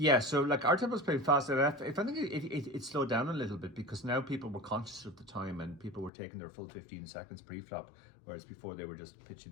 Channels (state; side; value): drops out; right; at 6.1 s